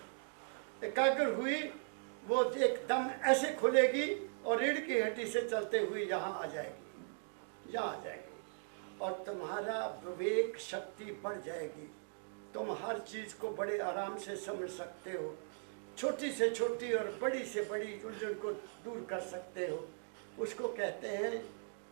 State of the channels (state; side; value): silent; left; digital silence